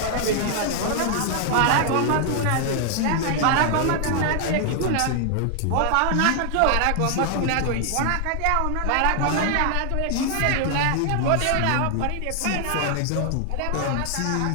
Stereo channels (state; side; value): different; both; correlation 0.00